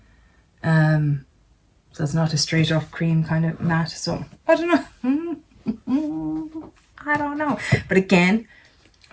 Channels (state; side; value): identical; both; correlation 1.00